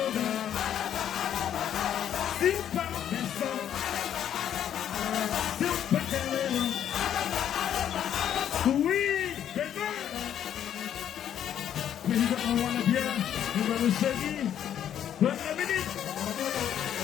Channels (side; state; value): right; quieter; 10.0 dB